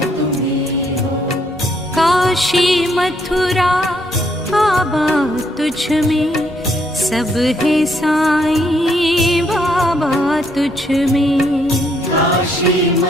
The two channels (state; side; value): normal; both; correlation 0.71